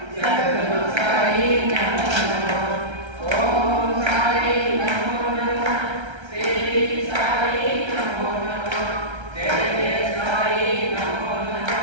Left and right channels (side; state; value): left; late; 1.3 ms